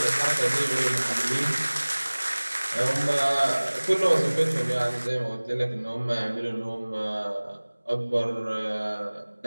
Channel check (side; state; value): both; inverted; correlation -1.00